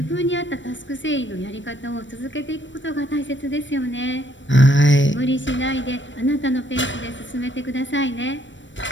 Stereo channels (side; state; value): right; late; 0.54 ms